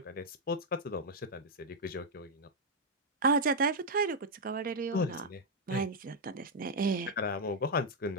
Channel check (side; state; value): both; normal; correlation -0.01